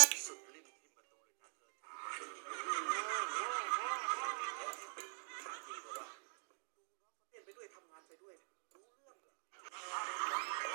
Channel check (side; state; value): left; silent; digital silence